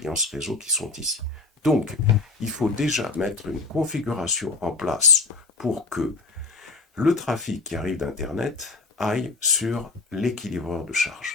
réseau qui sont ici. Donc, il faut déjà mettre une configuration en place pour que le trafic qui arrive d'Internet aille sur l'équilibreur de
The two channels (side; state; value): right; quieter; 3.8 dB